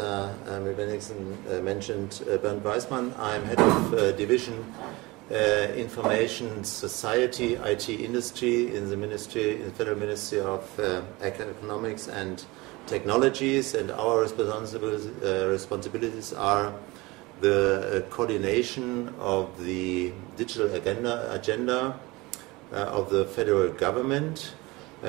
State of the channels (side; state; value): left; quieter; 22.7 dB